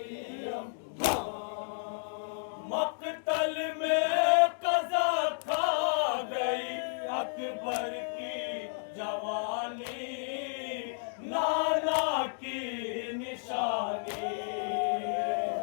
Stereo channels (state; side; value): silent; right; digital silence